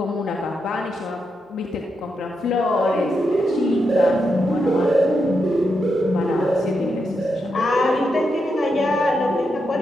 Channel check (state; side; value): normal; both; correlation 0.84